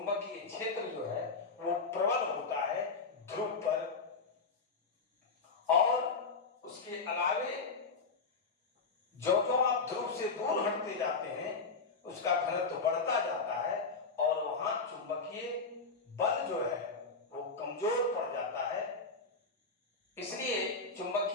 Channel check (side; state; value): right; quieter; 4.3 dB